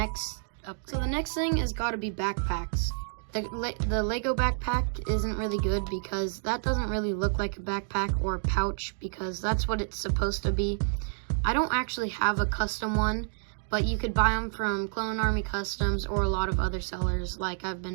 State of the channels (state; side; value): silent; left; 58 dB below the other